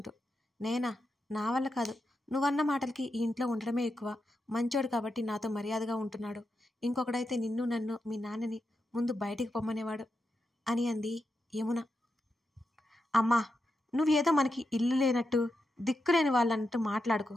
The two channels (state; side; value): normal; both; correlation 0.87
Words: నేనా? నా వల్ల కాదు. నువ్వన్న మాటలకి ఈ ఇంట్లో ఉండడమే ఎక్కువ. మంచోడు కాబట్టి నాతో మర్యాదగా ఉంటున్నాడు. ఇంకొకడైతే నిన్ను నన్ను మీ నాన్నని ముందు బయటికి పొమ్మనేవాడు అని అంది యమున. అమ్మా, నువ్వేదో మనకి ఇల్లు లేనట్టు దిక్కులేని వాళ్ళన్నట్టు మాట్లాడుకో.